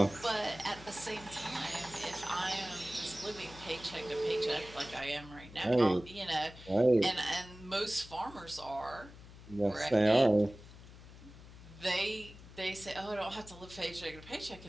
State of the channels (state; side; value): noise; left; hum, 18 dB below the sound